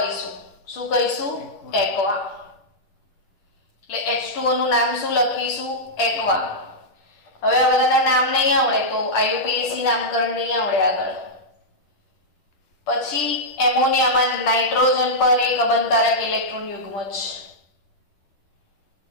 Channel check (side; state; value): right; late; 10 ms